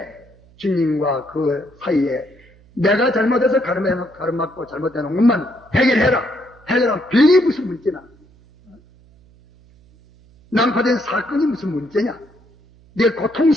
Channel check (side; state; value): right; noise; hum, 28 dB below the sound